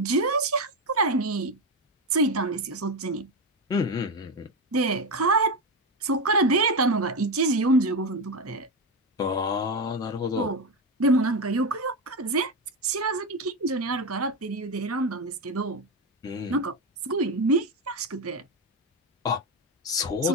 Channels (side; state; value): both; normal; correlation 0.13